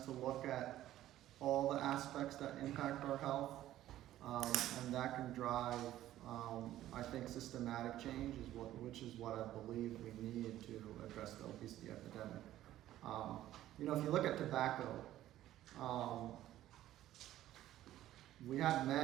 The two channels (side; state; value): left; quieter; 13.6 dB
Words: to look at all the aspects that impact our health, and that can drive, I think, systematic change, which is what I believe we need to address the obesity epidemic. If you look at tobacco, we had